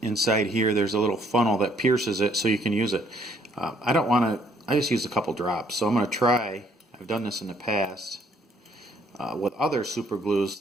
here there's a little funnel that pierces it so you can use it. I don't want to. I just used a couple drops, so I'm going to try. I've done this in the past with other super glues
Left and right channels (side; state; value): both; normal; correlation 0.65